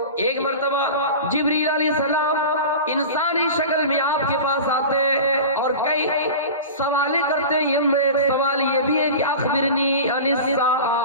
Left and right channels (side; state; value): both; inverted; correlation -0.32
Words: ایک مرتبہ جبریل علیہ السلام انسانی شکل میں آپ کے پاس آتے ہیں اور کئی سوالیں کرتے ہیں. ایک سوال یہ بھی ہے کہ اخبرنی عن